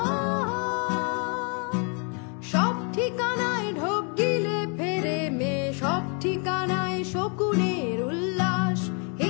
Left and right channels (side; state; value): right; quieter; 37.3 dB